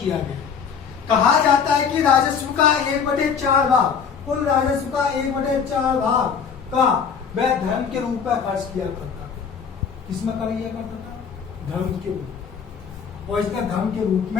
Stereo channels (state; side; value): quieter; right; 6.7 dB